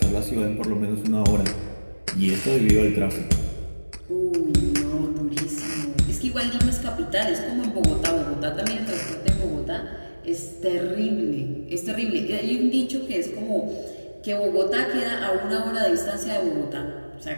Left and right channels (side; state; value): both; inverted; correlation -1.00